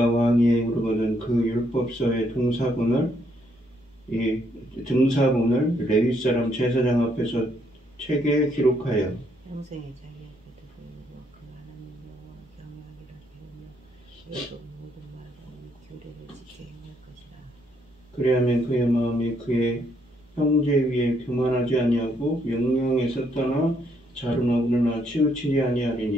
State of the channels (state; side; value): normal; both; correlation 0.72